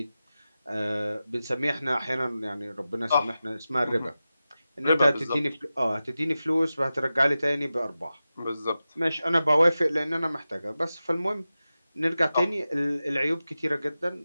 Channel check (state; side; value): inverted; both; correlation -0.94